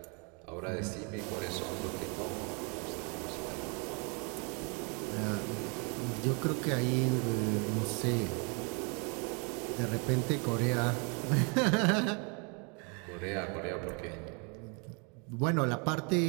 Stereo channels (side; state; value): left; quieter; 34.3 dB